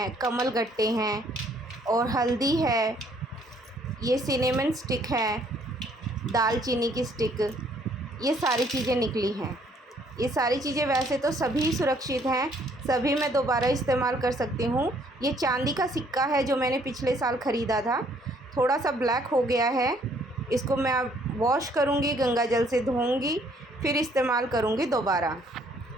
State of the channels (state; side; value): normal; both; correlation 0.64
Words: कमल गट्टे हैं और हल्दी है, ये सिनेमन स्टिक है, दालचीनी की स्टिक, ये सारी चीज़ें निकली हैं। ये सारी चीज़ें वैसे तो सभी सुरक्षित हैं, सभी मैं दोबारा इस्तेमाल कर सकती हूँ। ये चांदी का सिक्का है जो मैंने पिछले साल ख़रीदा था, थोड़ा सा ब्लैक हो गया है। इसको मैं अब वॉश करूँगी, गंगा जल से धोऊँगी, फिर इस्तेमाल करूँगी दोबारा।